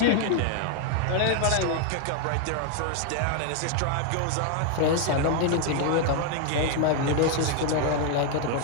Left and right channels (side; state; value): both; different; correlation 0.01